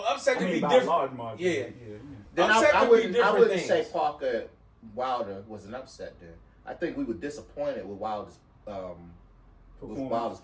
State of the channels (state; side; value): identical; both; correlation 1.00